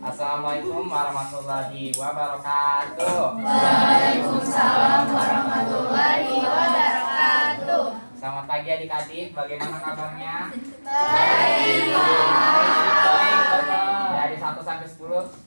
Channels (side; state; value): both; inverted; correlation -1.00